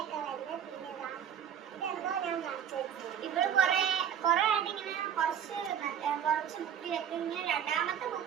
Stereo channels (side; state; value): left; quieter; 8.9 dB